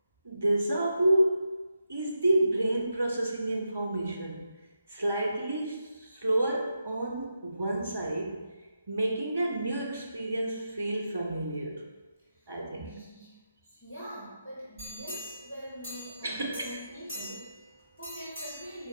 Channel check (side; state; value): both; inverted; correlation -0.87